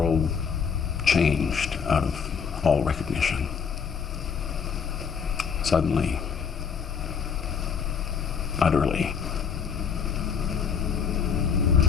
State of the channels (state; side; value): quieter; right; 6.5 dB